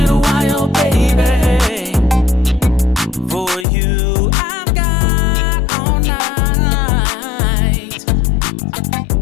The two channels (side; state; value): right; drops out; at 3.7 s